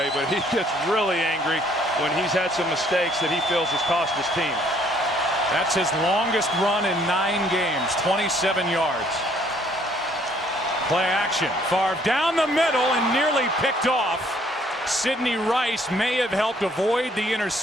but he gets really angry when he's had some mistakes that he feels has cost his team. That's his longest run in 9 games, 27 yards. Play action. Favre down the middle and nearly picked off Sidney Rice may have helped avoid the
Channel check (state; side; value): normal; both; correlation 0.63